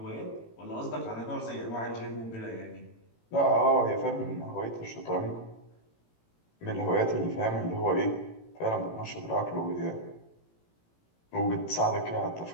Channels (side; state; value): right; late; 18 ms